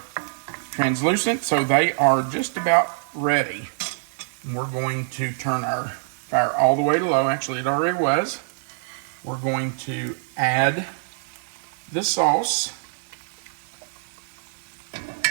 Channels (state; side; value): silent; left; 62 dB below the other